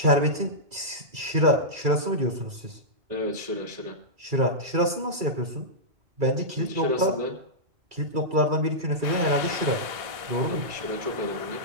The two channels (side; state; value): left; late; 2.3 ms